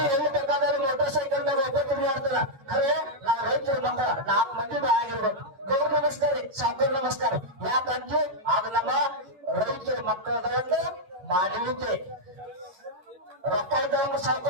ಎಲ್ಲಿ ಬೇಕಾದ್ರೆ ಮೋಟರ್ ಸೈಕಲ್ ದಾಗ ಒಬ್ಬ ತಿರುಗಾಡ್ತಾರ. ಖರೆ ನಾವ್ ರೈತರ ಮಕ್ಕಳ 4 ಮಂದಿ ಆಗಿರ್ಬೇಕು. ಗೌರ್ ನಮಸ್ಕಾರ, ಸಾಕರ್ ನಮಸ್ಕಾರ. ಯಾಕಂದ್ರೆ ಅದು ನಮ್ಮ ರೈತರ ಮಕ್ಕಳದ ಮಾನವೀಯತೆ. ರೊಕ್ಕ ಇದ್ದವಂಗ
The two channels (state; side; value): late; left; 11 ms